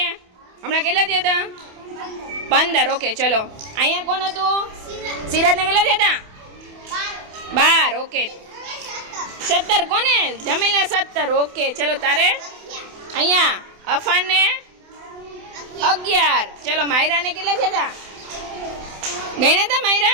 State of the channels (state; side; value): late; left; 28 ms